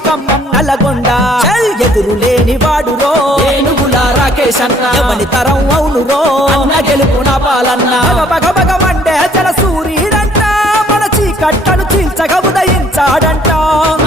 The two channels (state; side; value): normal; both; correlation 0.61